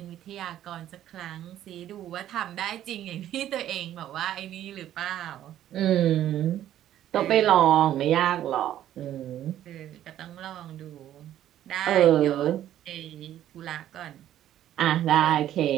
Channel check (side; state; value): left; quieter; 12.0 dB